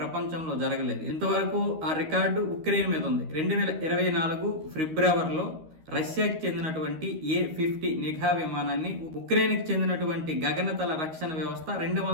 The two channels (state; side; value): late; left; 13 ms